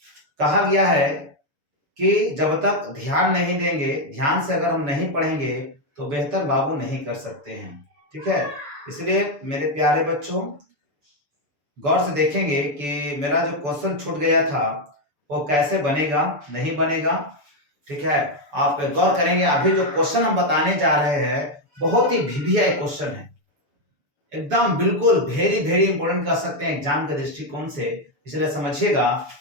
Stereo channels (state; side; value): late; left; 6.9 ms